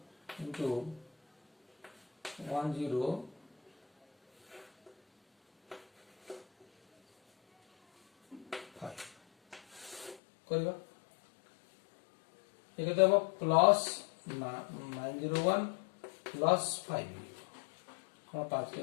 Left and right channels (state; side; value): drops out; right; at 10.2 s